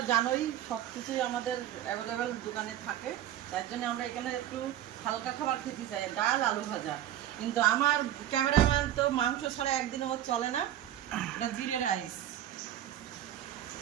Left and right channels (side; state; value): left; quieter; 11.9 dB